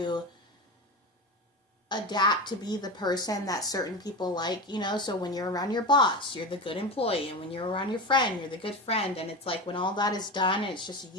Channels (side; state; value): both; normal; correlation 0.23